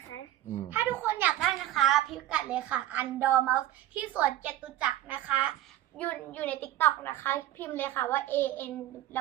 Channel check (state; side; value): quieter; left; 13.7 dB